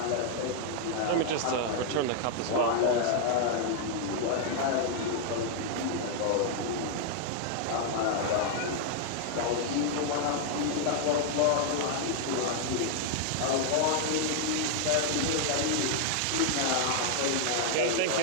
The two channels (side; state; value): both; different; correlation 0.00